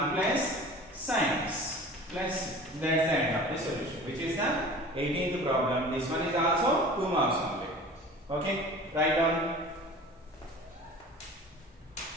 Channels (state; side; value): normal; both; correlation 0.41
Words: plus sin x plus c. That's the end of the solution, which is the 18th problem. This one is also 2 marks only. Okay, write down.